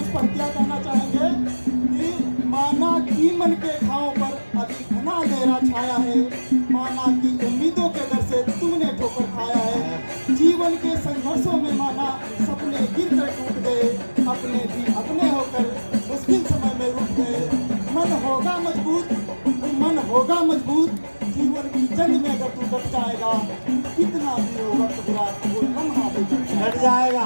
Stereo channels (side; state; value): both; inverted; correlation -1.00